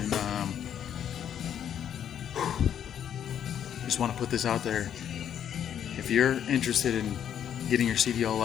just want to put this out there. If you're interested in getting your CDL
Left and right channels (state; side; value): quieter; right; 9.4 dB